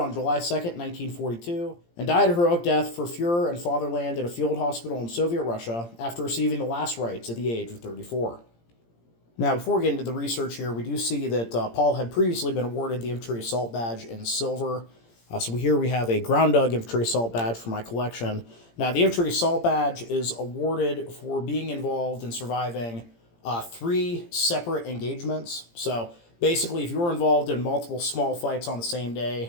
July 2nd, 1942, and died a heroic death for Fuhrer and fatherland at a field hospital in Soviet Russia after receiving the last rites at the age of 34. Now, before we get into the research here, we do see that Paul had previously been awarded the Infantry Assault Badge in Silver. So here we have a Ground Dug Infantry Assault Badge for my collection. Now, the Infantry Assault Badge is awarded for being involved in surviving 3 separate engagements. So basically, if you were involved in multiple small fights on the same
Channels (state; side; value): late; right; 17 ms